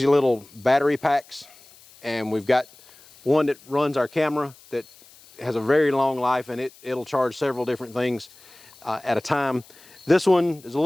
little battery packs. And we've got one that runs our camera that has a very long life, and it'll charge several different things at a time. This one is a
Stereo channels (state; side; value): noise; left; hiss, 25 dB below the sound